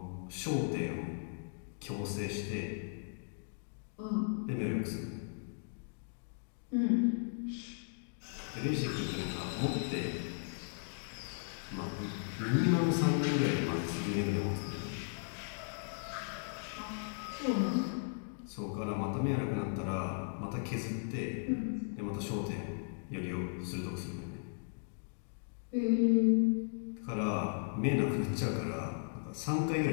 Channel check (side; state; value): right; silent; digital silence